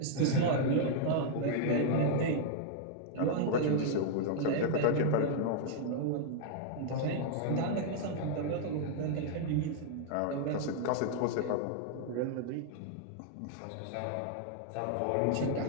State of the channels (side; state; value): both; different; correlation -0.01